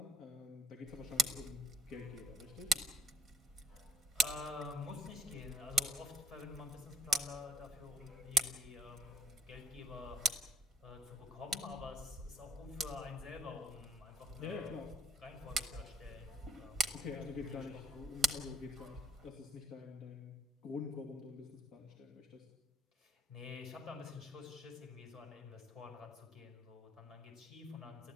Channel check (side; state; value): both; normal; correlation 0.62